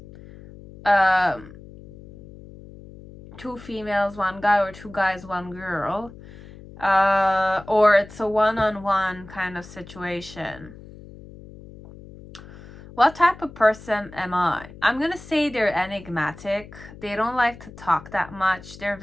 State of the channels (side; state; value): left; noise; hum, 18 dB below the sound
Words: 2 females, 1 guy, or 2 guys, 1 girl. Or it's a one-on-one kind of situation. What type of person am I? I'm gonna say they're enigmatic. They don't like to talk that much. They're